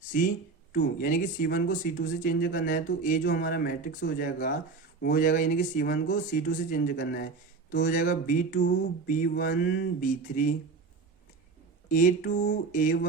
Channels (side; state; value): left; quieter; 4.6 dB